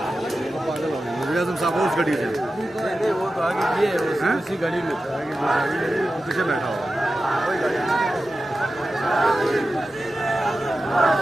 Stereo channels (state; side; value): normal; both; correlation 0.93